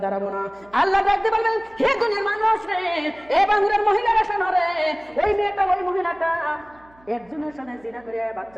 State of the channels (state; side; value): noise; right; hum, 29 dB below the sound